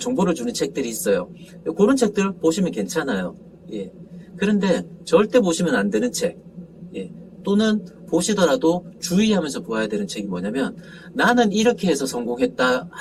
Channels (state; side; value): identical; both; correlation 1.00